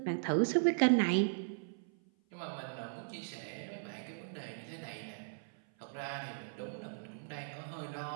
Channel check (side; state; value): left; silent; 53 dB below the other